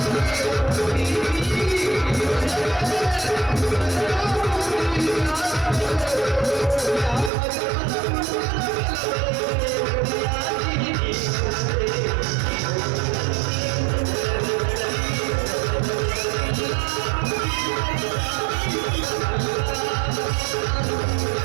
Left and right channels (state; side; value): drops out; left; at 7.3 s